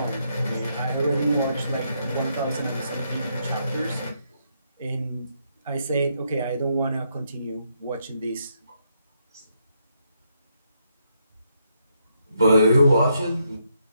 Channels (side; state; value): both; inverted; correlation -0.77